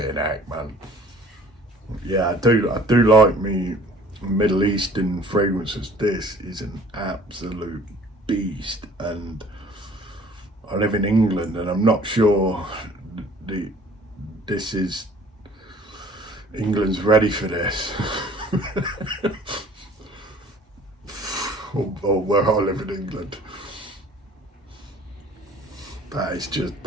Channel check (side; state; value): both; normal; correlation 0.52